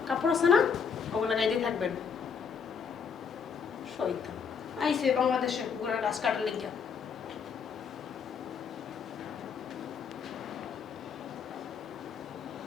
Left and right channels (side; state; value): right; quieter; 6.4 dB